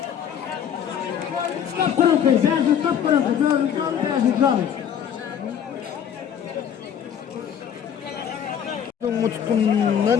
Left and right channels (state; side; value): quieter; right; 8.6 dB